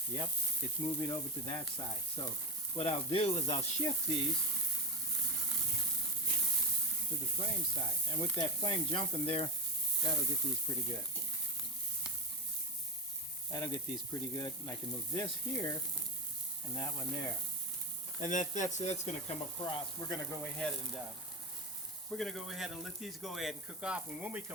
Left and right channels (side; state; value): both; normal; correlation 0.21